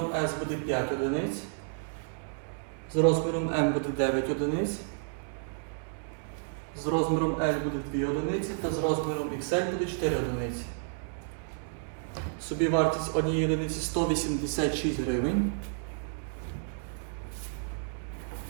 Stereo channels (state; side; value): silent; left; digital silence